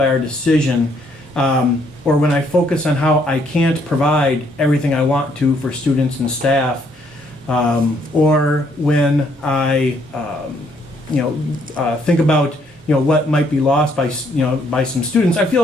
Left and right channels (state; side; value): normal; both; correlation 0.69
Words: our decision, or when I focus on how I can't provide everything I want to for students and staff, or when I think about what might be lost by some students, I